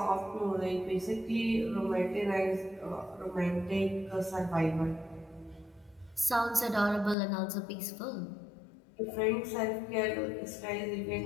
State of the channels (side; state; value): right; drops out; at 7.2 s